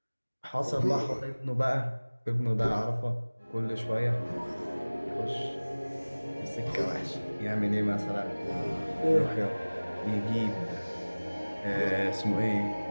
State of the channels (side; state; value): both; inverted; correlation -1.00